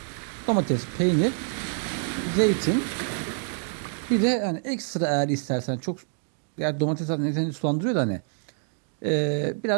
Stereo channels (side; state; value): left; silent; 61 dB below the other